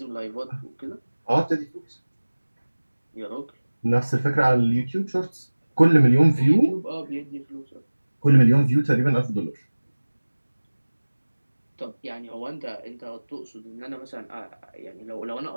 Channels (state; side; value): inverted; both; correlation -1.00